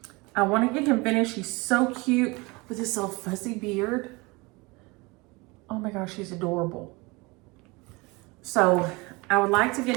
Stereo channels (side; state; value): left; quieter; 25.3 dB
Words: I want to get him finished. He's so cute with this little fuzzy beard. Oh my gosh, he's adorable. So I would like to get